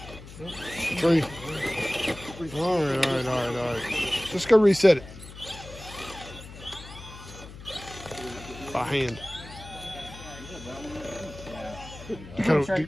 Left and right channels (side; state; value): left; noise; hum, 15 dB below the sound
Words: 3. All right. Just go reset it. By hand.